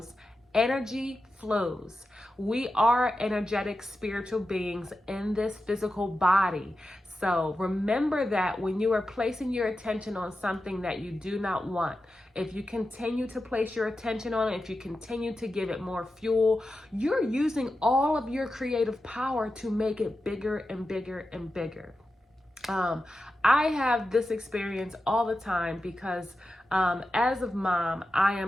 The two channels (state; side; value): normal; both; correlation 0.91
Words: energy flows. We are energetic spiritual beings in this physical body. So remember that when you are placing your attention on something that you do not want, if you continue to place your attention on it, if you continue to give it more fuel, you're using all of your creative power to make it bigger and bigger and bigger. I have this experience all the time because as a mom, I